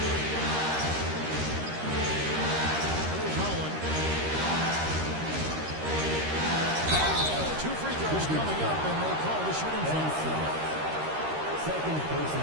Here's Holland. 2 free throws coming up, and they call the shooting foul. Second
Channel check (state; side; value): late; left; 13 ms